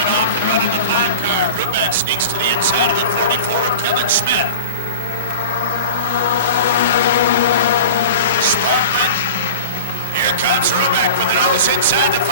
off and running the 5 car. Ruback sneaks to the inside of the 44 of Kevin Smith. Sparkman. Here comes Ruback with the nose inside the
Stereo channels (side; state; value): both; inverted; correlation -0.34